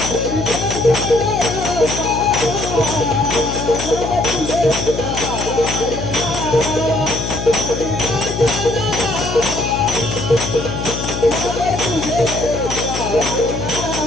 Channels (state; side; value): noise; left; hum, 5 dB below the sound